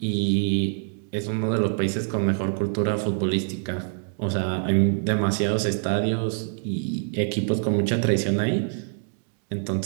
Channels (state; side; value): silent; left; digital silence